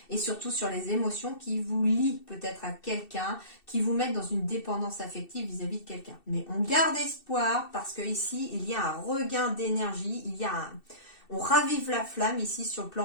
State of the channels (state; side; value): late; right; 2.7 ms